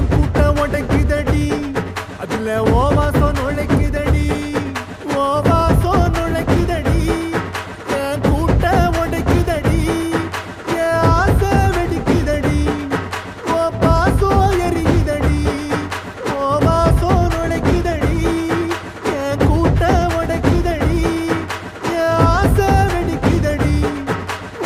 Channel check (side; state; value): both; identical; correlation 1.00